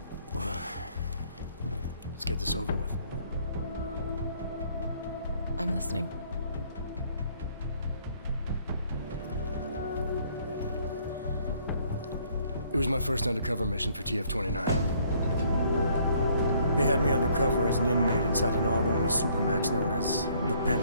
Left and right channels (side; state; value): both; inverted; correlation -0.63